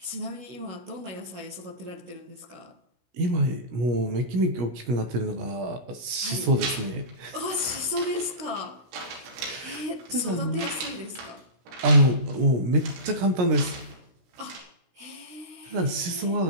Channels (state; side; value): late; left; 16 ms